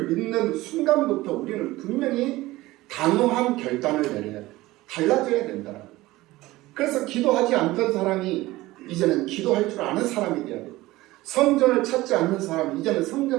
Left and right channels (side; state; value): left; quieter; 18.4 dB